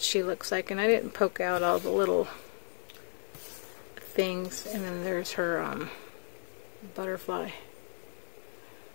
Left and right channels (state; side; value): silent; right; 55 dB below the other